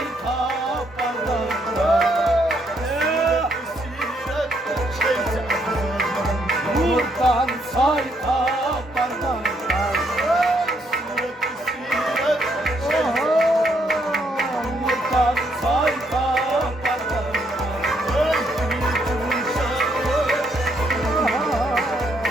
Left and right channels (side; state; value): both; normal; correlation 0.73